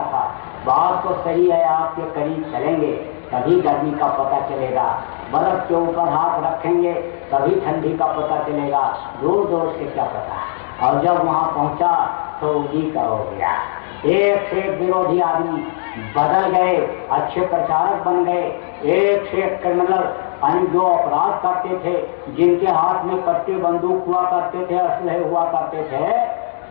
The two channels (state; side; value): silent; right; digital silence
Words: था बात तो सही है, आपके करीब चलेंगे तभी गर्मी का पता चलेगा, बर्फ के ऊपर हाथ रखेंगे तभी ठंडी का पता चलेगा, दूर दूर से क्या पता। और जब वहाँ पहुँचा तो उन्हीं का हो गया। एक से एक विरोधी आदमी बदल गए, अच्छे प्रचारक बन गए। एक से एक क्रिमिनल जो अपराध करते थे, जिनके हाथ में कट्टे बंदूक हुआ करते थे, असलहे हुआ करते थे,